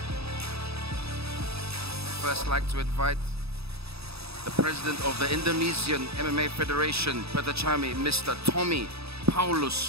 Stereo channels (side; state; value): left; late; 0.78 ms